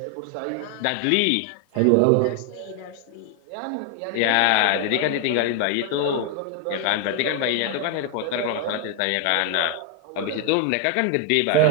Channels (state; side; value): different; both; correlation 0.00